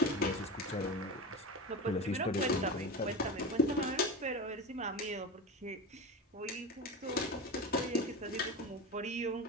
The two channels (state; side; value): normal; both; correlation 0.26